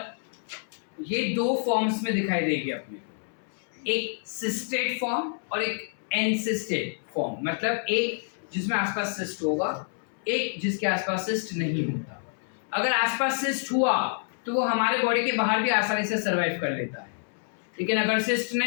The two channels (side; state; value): right; silent; 60 dB below the other